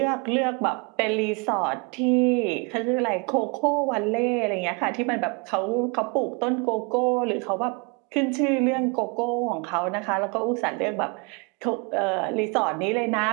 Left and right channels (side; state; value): left; quieter; 31.7 dB